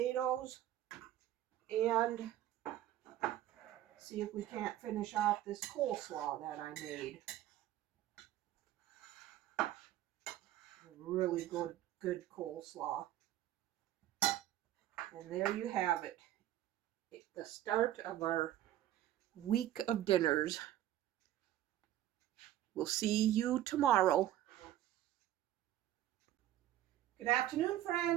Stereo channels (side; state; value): left; quieter; 13.0 dB